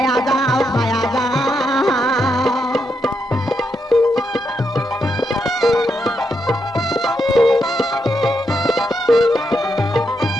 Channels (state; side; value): normal; both; correlation 0.82